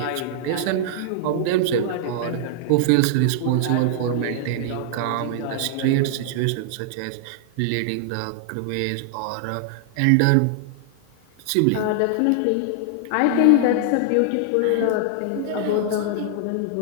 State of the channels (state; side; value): different; both; correlation -0.01